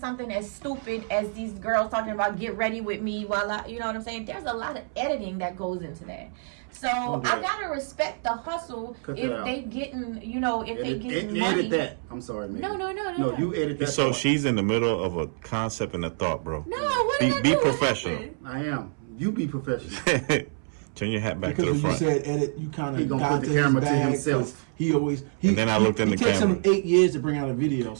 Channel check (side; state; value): left; silent; 59 dB below the other